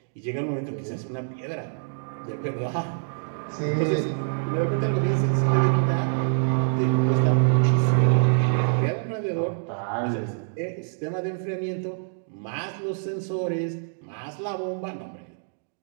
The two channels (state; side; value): silent; left; digital silence